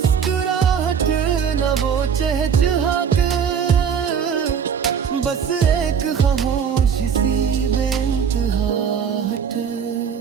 ना वो चहचहाट। बस एक खामोशी सी बेइंतहाट।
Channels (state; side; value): quieter; left; 7.2 dB